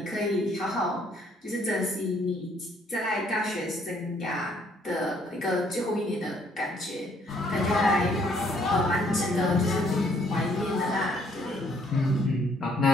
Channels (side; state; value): both; normal; correlation 0.66